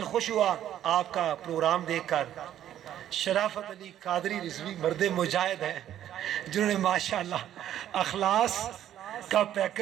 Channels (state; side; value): quieter; left; 11.3 dB